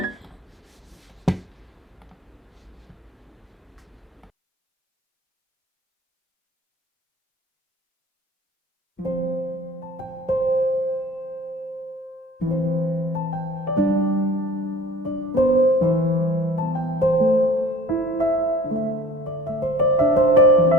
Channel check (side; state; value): both; normal; correlation 0.46